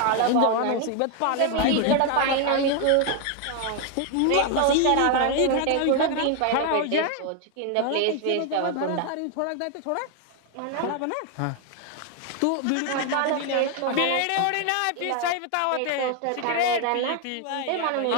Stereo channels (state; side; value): different; both; correlation 0.01